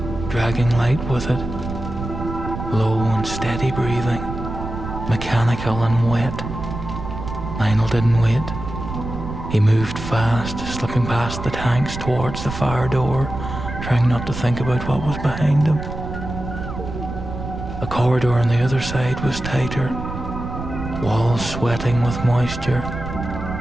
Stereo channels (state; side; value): noise; right; rumble, 7 dB below the sound